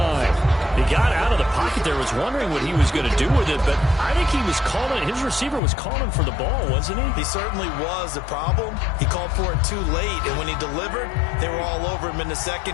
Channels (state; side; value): drops out; right; at 5.6 s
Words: He got out of the pocket there, was wondering what he was going to do with it, but I think he was calling, his receiver was calling for the ball, wasn't he? He certainly was. The problem, he called for it too late, and when he delivered, they were all over him in the